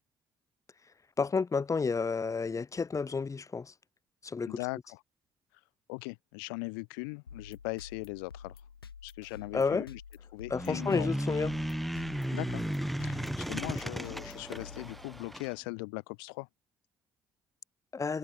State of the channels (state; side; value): quieter; right; 3.9 dB